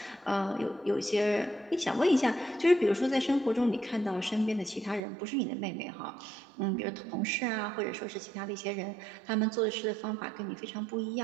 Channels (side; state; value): left; drops out; at 5.0 s